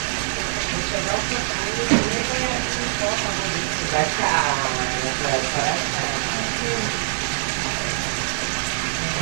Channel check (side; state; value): left; silent; digital silence